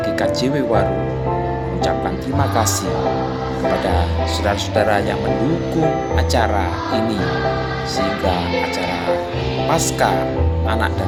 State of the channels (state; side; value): identical; both; correlation 1.00